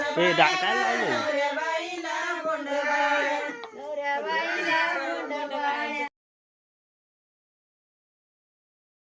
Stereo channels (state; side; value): identical; both; correlation 1.00